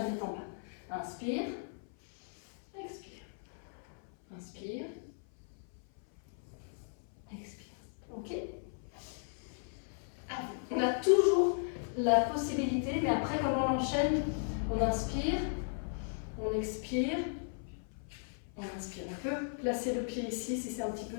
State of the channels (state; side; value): silent; right; 54 dB below the other